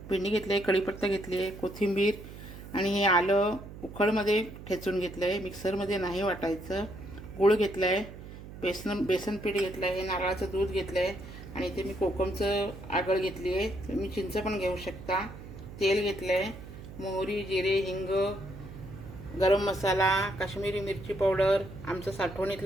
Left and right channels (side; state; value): right; noise; hum, 14 dB below the sound